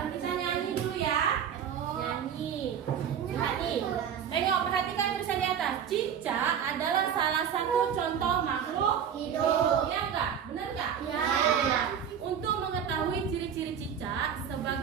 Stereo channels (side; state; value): left; quieter; 8.2 dB